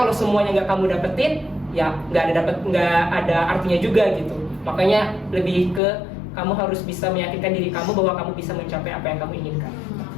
semuanya nggak kamu dapetin, ya nggak ada artinya juga gitu. Makanya lebih ke kamu harus bisa meyakinkan diri kamu bahwa kamu bisa mencapai apa yang kamu inginkan.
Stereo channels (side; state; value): right; drops out; at 5.8 s